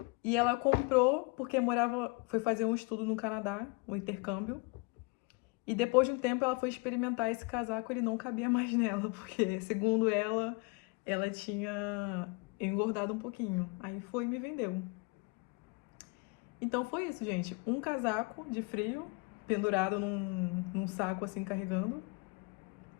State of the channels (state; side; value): quieter; right; 28.5 dB